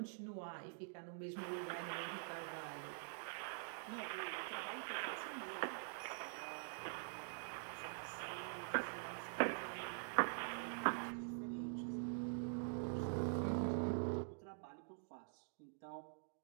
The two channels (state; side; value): silent; left; digital silence